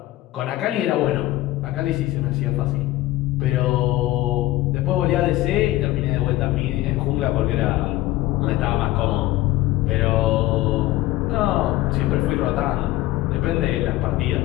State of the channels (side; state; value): right; quieter; 16.7 dB